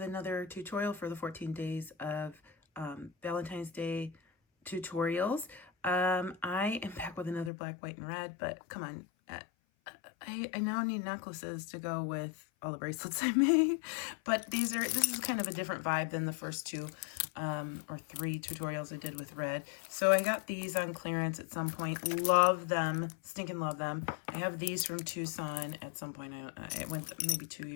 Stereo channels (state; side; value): drops out; right; at 7.5 s